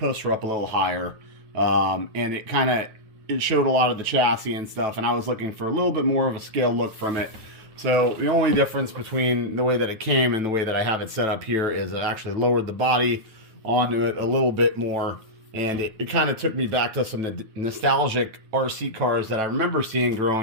are up a little higher, and it showed a lot of the chassis and stuff, and I was looking for a little bit more of a scale look from it. So the only difference between the way that it came and the way that I have it set up here is it actually lowered the body onto it a little bit more, and it kind of took me back to some nostalgic RC cars that I remember seeing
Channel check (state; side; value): late; left; 9.1 ms